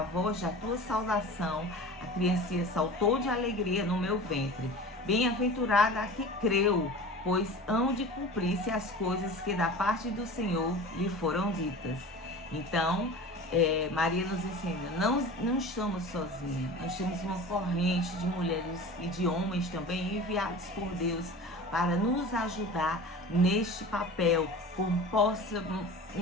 voz da tua saudação, a criancinha saltou de alegria no meu ventre. Bem-aventurada a que creu, pois hão de cumprir-se as coisas que da parte do Senhor lhe foram ditas. Então, Maria nos ensina, não estamos sozinhos, nós temos uma corrente de mulheres e de homens também enviados por Deus para nos ajudar neste papel, como possa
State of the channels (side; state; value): both; normal; correlation 0.37